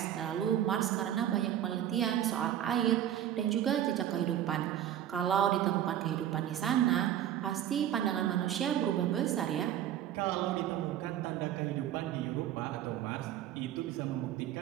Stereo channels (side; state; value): left; quieter; 11.1 dB